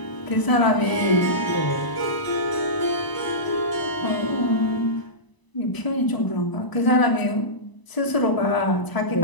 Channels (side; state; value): right; late; 1.0 ms